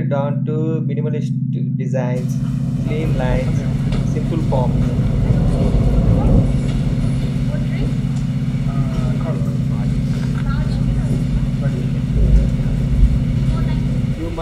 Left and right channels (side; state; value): both; identical; correlation 1.00